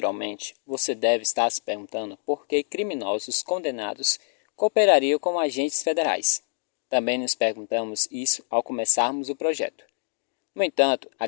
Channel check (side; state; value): right; silent; digital silence